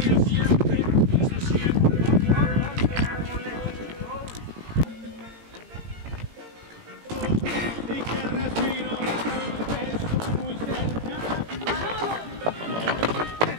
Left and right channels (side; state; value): left; late; 18 ms